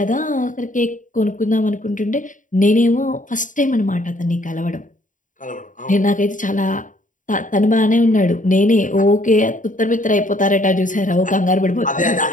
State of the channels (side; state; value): right; late; 0.38 ms